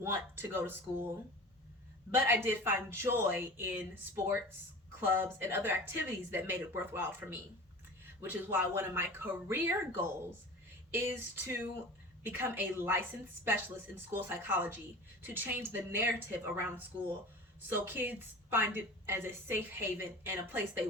to go to school, but I did find joy in sports, clubs, and other activities that made it worthwhile for me, which is why one of my career goals is to become a licensed specialist in school psychology to change the narrative around school so kids find it as a safe haven and a place they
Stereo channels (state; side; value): normal; both; correlation 0.37